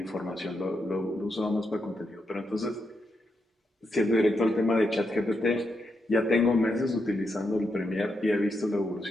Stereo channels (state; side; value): normal; both; correlation 0.83